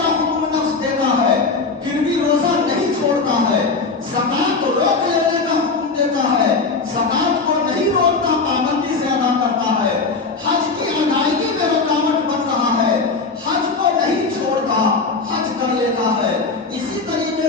حکم نفس دیتا ہے پھر بھی روزہ نہیں چھوڑتا ہے، زکات روک لینے کا حکم دیتا ہے، زکات کو نہیں روکتا، پابندی سے ادا کرتا ہے، حج کی ادائیگی میں رکاوٹ بن رہا ہے، حج کو نہیں چھوڑتا، حج کر لیتا ہے۔ اسی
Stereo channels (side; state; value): right; quieter; 4.2 dB